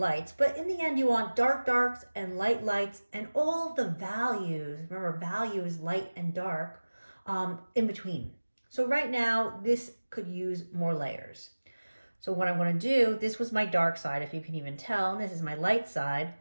but in the end you want dark darks and light lights and all of the values. Remember, value is light and dark in between. So right now this could use more layers. So what I'm going to do, this was my dark side, if you can even tell, and this is my light side.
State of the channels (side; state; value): both; inverted; correlation -1.00